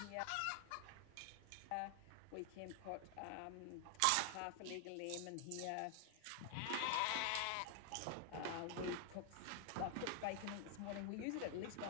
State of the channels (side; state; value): both; different; correlation 0.00